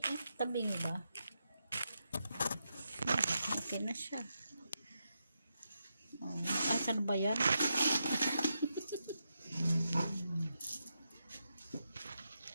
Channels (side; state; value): both; inverted; correlation -0.85